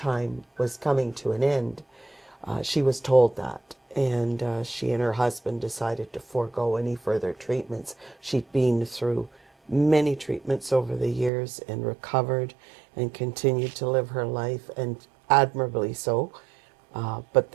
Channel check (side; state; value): left; drops out; at 11.3 s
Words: was coming to an end. She was told that. And she and her husband decided to forego any further treatments. She'd been through many treatments over the years and recovered and continued to live her life, and admirably so. But